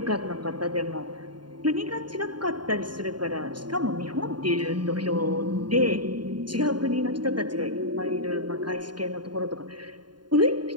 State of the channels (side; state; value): left; late; 0.71 ms